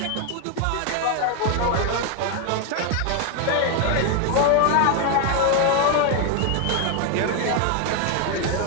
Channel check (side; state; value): both; different; correlation 0.01